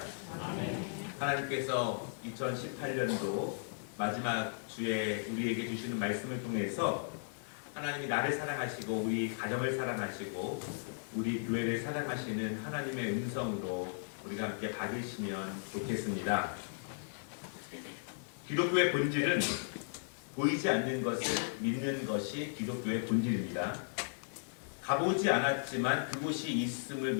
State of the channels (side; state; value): right; silent; digital silence